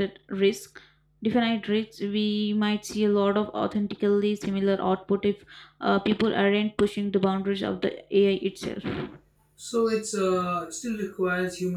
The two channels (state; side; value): identical; both; correlation 1.00